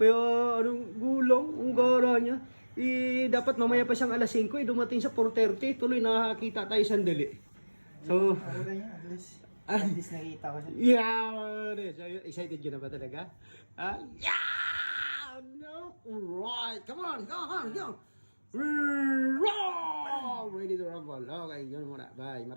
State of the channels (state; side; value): inverted; both; correlation -1.00